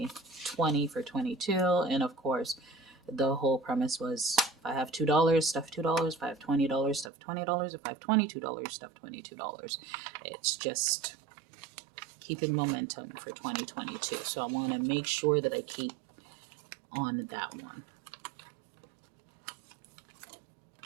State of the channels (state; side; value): drops out; left; at 7.1 s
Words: 20 for 22. And of course, the whole premise was if I have $2, stuff $2. If I have $20, stuff $20. If I have $22, stuff $22. It's just keeping momentum for 2022. So I want to make sure that I keep on that one.